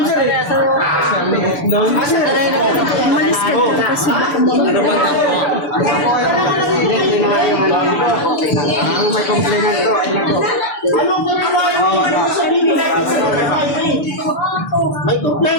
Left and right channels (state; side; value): late; right; 6.9 ms